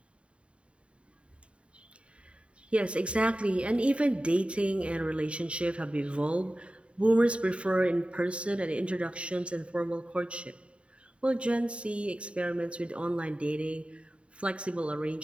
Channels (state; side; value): late; left; 0.060 ms